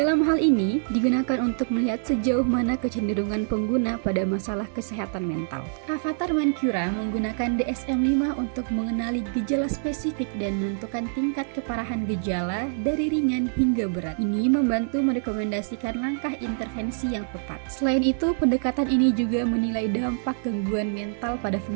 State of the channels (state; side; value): silent; left; digital silence